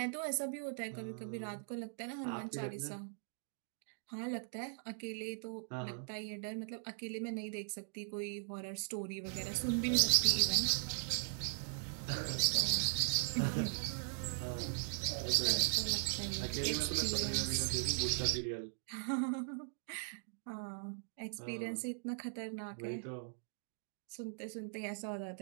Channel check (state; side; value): silent; left; digital silence